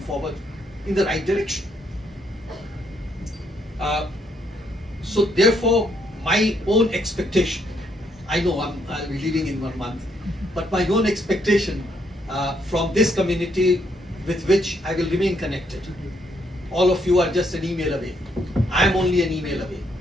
in the right direction. So therefore, my own expectation, I know I'll be leaving in 1 month, but my own expectation from this community with which I will remain connected. All of you are just an email away. I am only an email away.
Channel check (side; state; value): both; normal; correlation 0.73